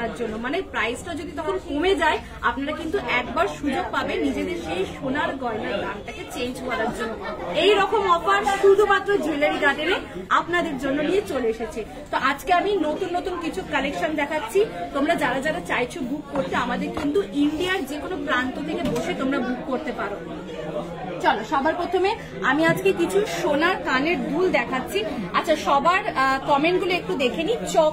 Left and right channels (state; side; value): identical; both; correlation 1.00